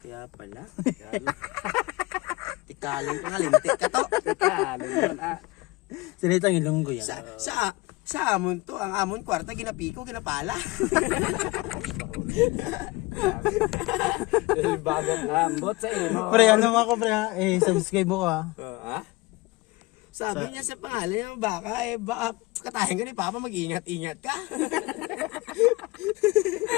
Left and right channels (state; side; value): quieter; right; 22.4 dB